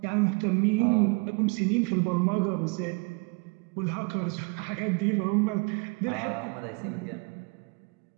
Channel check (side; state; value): left; quieter; 31.5 dB